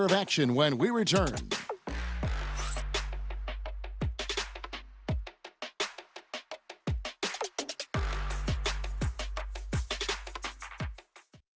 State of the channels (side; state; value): both; identical; correlation 1.00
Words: of action when we return.